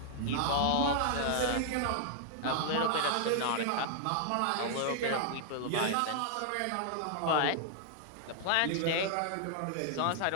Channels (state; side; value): different; both; correlation -0.01